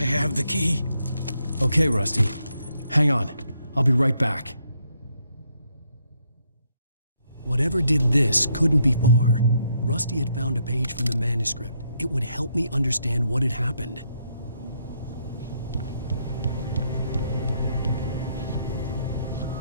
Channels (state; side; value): inverted; both; correlation -0.75